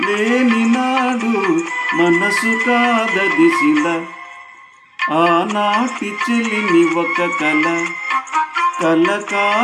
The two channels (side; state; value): both; identical; correlation 1.00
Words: లేని నాడు మనసు కాదది శిల. ఆనాటి చెలిమి ఒక కల, కల